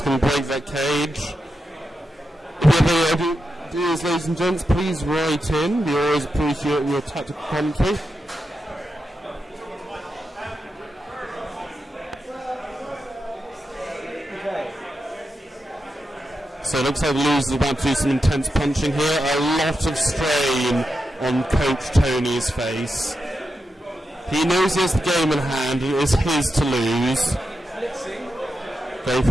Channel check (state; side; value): normal; both; correlation 0.88